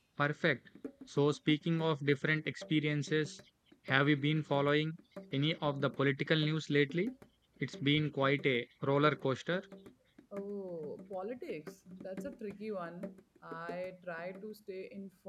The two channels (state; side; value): identical; both; correlation 1.00